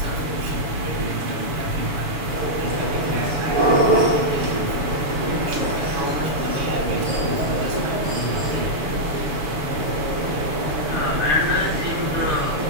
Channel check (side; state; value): left; late; 7.0 ms